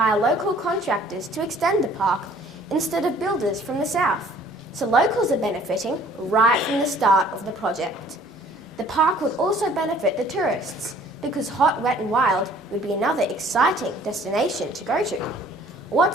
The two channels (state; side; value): normal; both; correlation 0.55